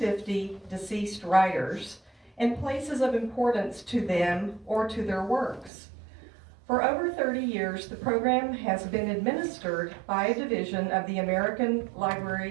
deceased writers and places of importance to them or to their works. For over 30 years, the program has been administered by a division of the American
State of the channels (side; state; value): left; drops out; at 5.7 s